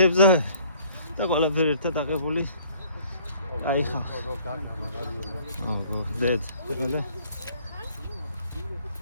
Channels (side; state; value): both; inverted; correlation -0.57